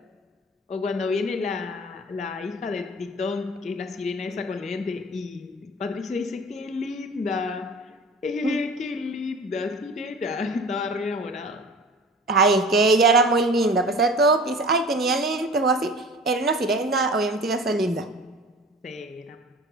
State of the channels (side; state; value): both; normal; correlation 0.42